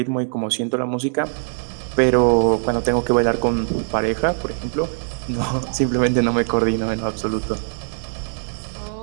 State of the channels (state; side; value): silent; left; digital silence